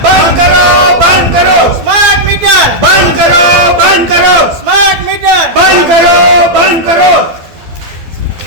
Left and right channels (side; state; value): left; late; 12 ms